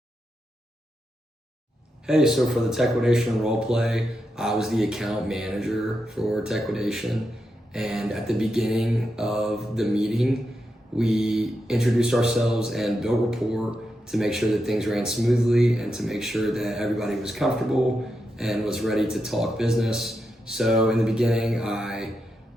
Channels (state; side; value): normal; both; correlation 0.86